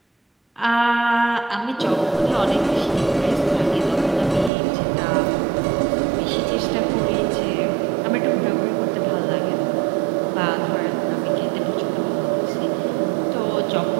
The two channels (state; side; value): drops out; left; at 4.5 s